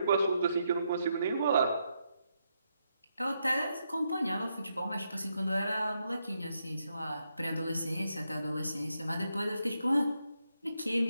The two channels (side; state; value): both; inverted; correlation -0.81